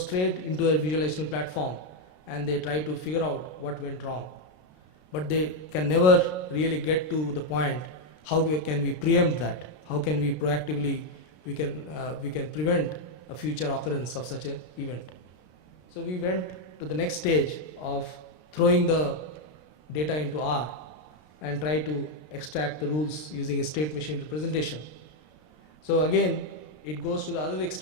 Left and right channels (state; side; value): late; right; 33 ms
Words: straight into a visualization platform, and they try to figure out what went wrong. But they can never really get to the point, how can we preempt that? How can we proactively, we can prevent a future occurrence of such an event. So we went to the next stage of throwing the data into R and try to extract the rules using a state machine representation. So again, it goes to the other